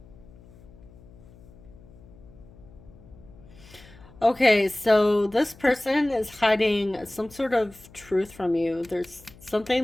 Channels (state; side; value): noise; left; hum, 22 dB below the sound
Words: Okay, so this person is hiding some sort of truth from you. There's